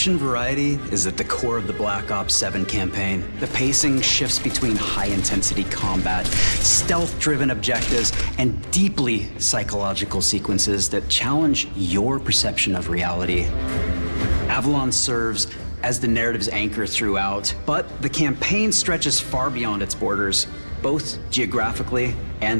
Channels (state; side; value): inverted; both; correlation -1.00